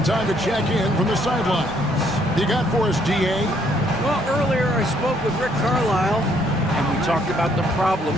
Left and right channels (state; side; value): normal; both; correlation 0.68